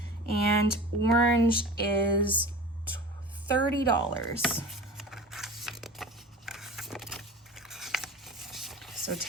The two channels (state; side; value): normal; both; correlation 0.36